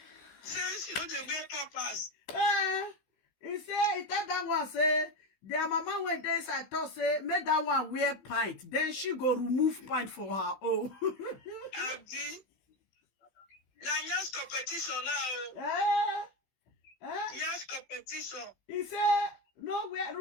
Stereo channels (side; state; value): right; late; 15 ms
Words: Say she don't wear papas. He tell that one say their mama went there inside thought say make that one wear pint. Then she go remove pint for her own. Abi. Now yes competition now. Yes competition. He say no